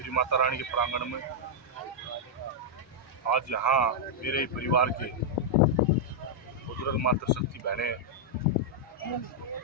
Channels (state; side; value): normal; both; correlation -0.05